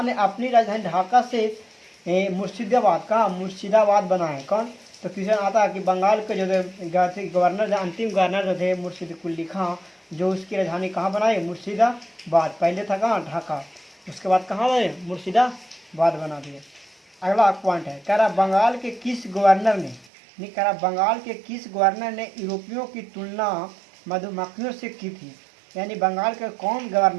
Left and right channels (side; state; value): left; drops out; at 20.1 s